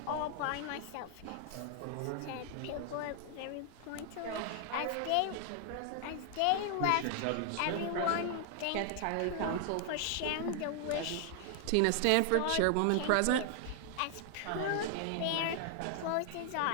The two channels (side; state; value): both; different; correlation 0.00